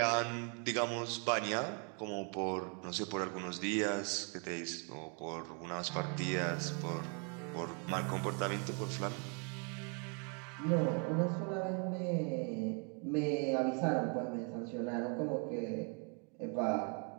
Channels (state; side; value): quieter; left; 38.4 dB